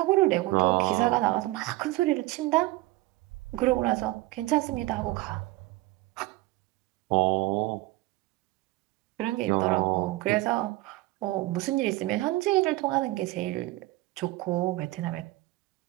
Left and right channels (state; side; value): quieter; left; 19.0 dB